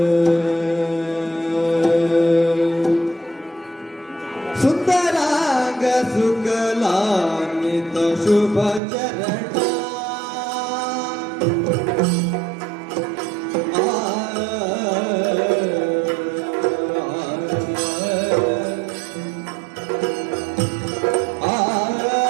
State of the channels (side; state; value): left; drops out; at 8.8 s